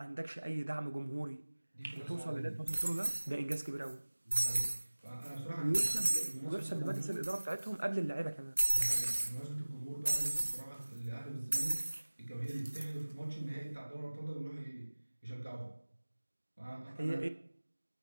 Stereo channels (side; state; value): both; inverted; correlation -1.00